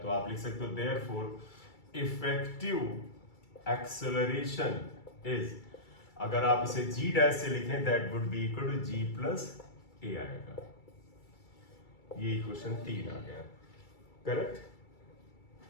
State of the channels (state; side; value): late; right; 2.3 ms